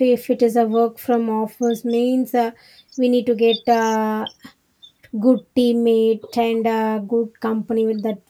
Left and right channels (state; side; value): identical; both; correlation 1.00